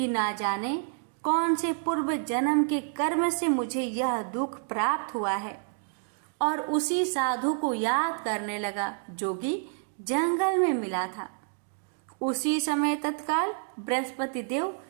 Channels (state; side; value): silent; left; 59 dB below the other